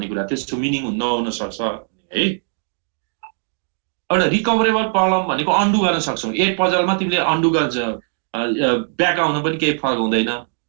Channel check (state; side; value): silent; left; digital silence